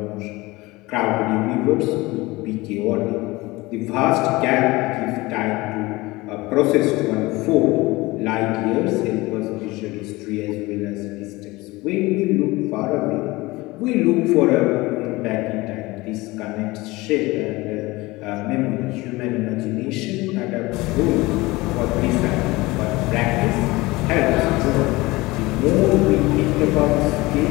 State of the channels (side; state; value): right; quieter; 21.3 dB